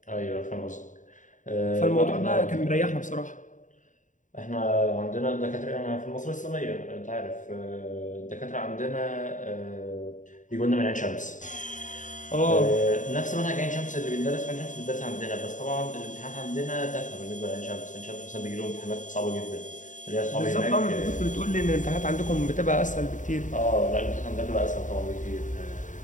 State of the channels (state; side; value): late; right; 0.37 ms